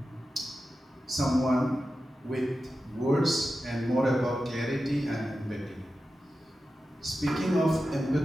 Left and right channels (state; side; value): normal; both; correlation 0.92